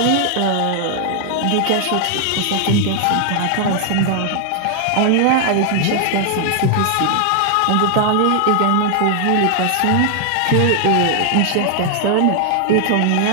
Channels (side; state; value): both; different; correlation 0.00